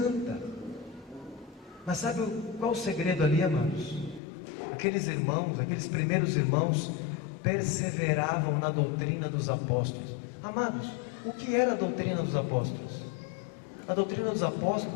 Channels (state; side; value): drops out; right; at 4.2 s